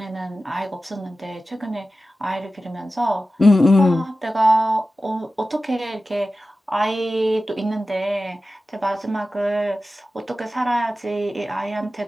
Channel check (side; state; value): both; normal; correlation 0.94